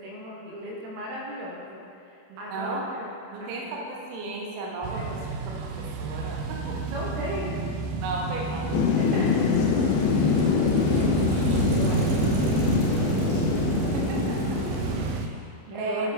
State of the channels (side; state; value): left; late; 27 ms